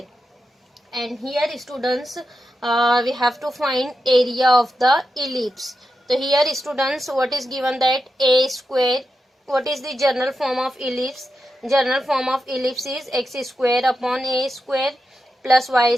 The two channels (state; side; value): normal; both; correlation 0.89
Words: And here students, we have to find area of the ellipse. So here students, what is given, that a square, what is the general form of ellipse? General form of ellipse is x square upon a square plus y